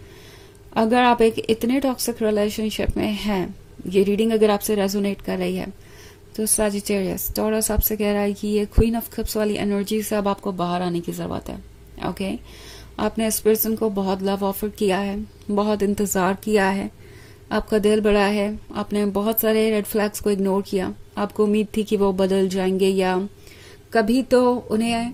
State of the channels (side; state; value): both; identical; correlation 1.00